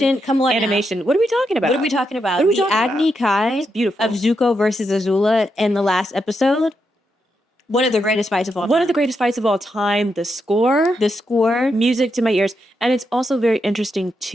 come on animation, now. What are we talking about? What are we talking about? The Agni Kai beautiful. of Zuko versus Azula in the last episode. One of the greatest fights of all time. One of the greatest fights of all time. The score. Music to my ears. And it's also very interesting,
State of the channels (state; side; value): normal; both; correlation 0.83